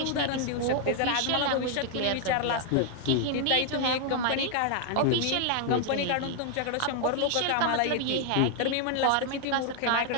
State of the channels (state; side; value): different; both; correlation 0.00